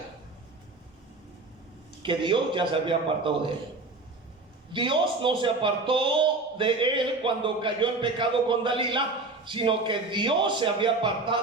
que Dios ya se había apartado de él. Dios no se apartó de él cuando cayó en pecado con Dalila, sino que Dios se había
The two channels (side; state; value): left; quieter; 3.4 dB